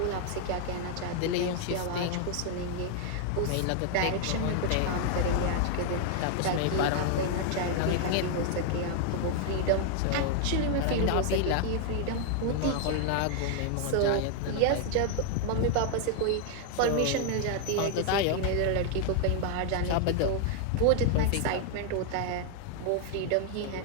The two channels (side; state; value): both; different; correlation 0.00